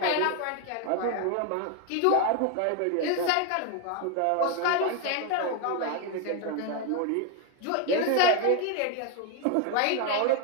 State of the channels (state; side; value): different; both; correlation 0.01